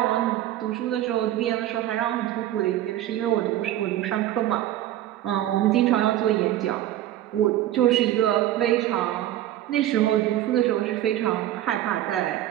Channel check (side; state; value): left; quieter; 13.3 dB